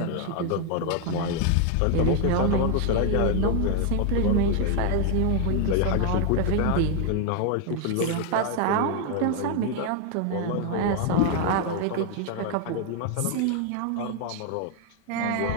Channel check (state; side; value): different; both; correlation 0.01